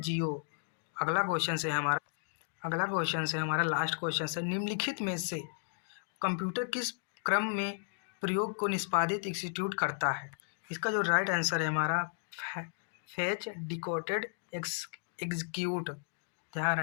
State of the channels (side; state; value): right; silent; digital silence